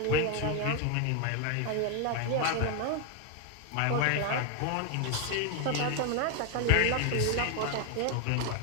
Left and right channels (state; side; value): different; both; correlation 0.01